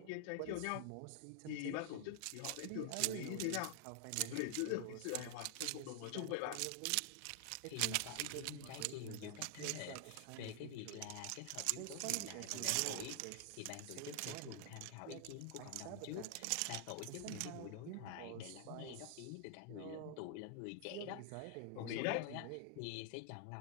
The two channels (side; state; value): both; different; correlation 0.00